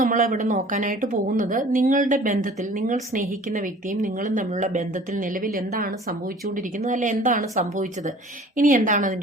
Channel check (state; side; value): normal; both; correlation 0.48